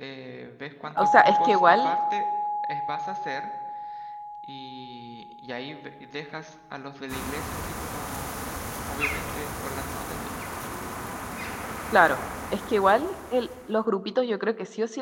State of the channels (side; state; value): both; identical; correlation 1.00